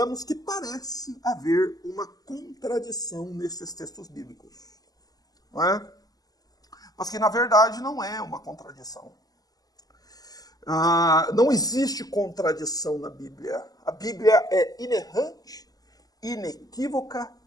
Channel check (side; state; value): right; late; 0.18 ms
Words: que parece haver uma contradição nesses textos bíblicos. Não é? Mas que, na verdade, não é uma contradição. Não existe contradição na Bíblia. A Bíblia é inerrante, inequívoca,